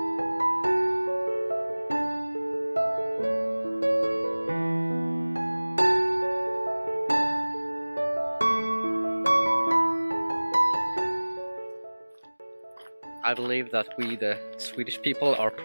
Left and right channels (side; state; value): both; inverted; correlation -1.00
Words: I believe that we, the Swedish people, are